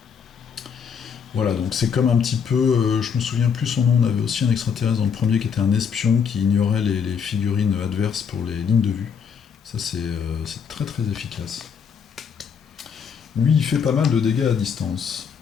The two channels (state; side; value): quieter; right; 6.8 dB